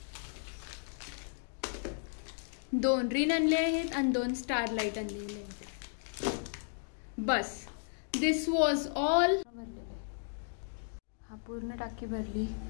2 रिन आणले आहेत आणि 2 स्टार लाईट आणलेले आहेत. बस दिस वॉज ऑल. हा पूर्ण टाकी भरली.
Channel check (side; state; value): right; silent; digital silence